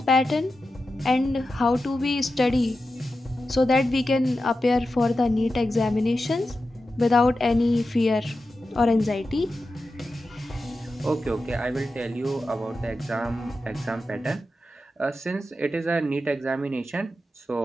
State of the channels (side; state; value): both; normal; correlation 0.91